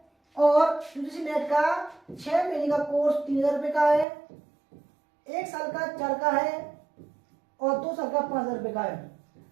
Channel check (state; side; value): drops out; left; at 4.0 s